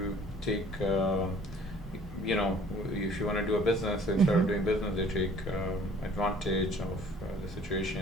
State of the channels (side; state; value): both; normal; correlation 0.53